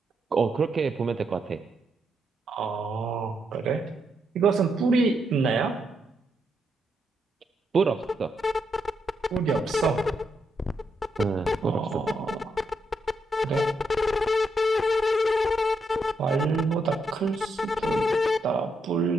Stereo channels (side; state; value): both; normal; correlation 0.80